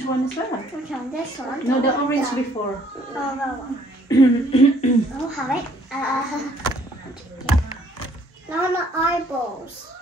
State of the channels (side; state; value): both; normal; correlation 0.62